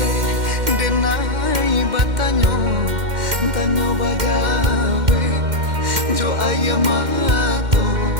denai batanyo, tanyo bagawe jo ayamato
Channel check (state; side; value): late; left; 2.1 ms